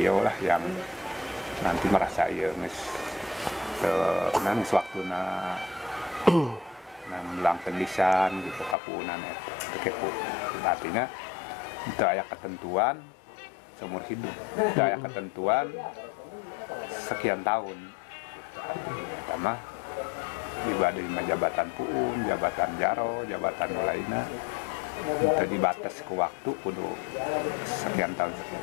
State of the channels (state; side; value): drops out; right; at 8.8 s